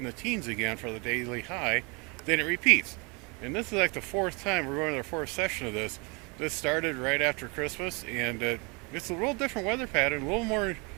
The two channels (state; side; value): quieter; left; 29.9 dB